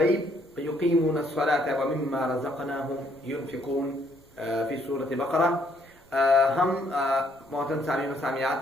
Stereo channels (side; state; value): both; normal; correlation 0.68